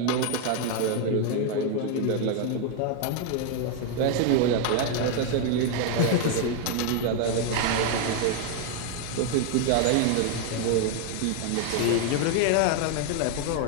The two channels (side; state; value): both; different; correlation 0.01